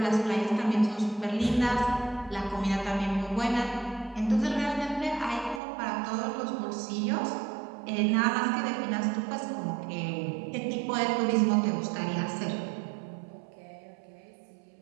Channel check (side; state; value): left; drops out; at 5.6 s